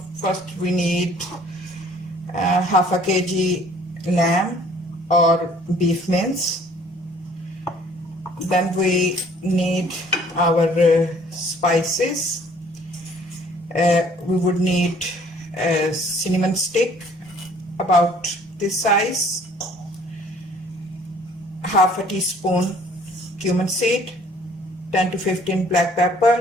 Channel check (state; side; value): normal; both; correlation 0.56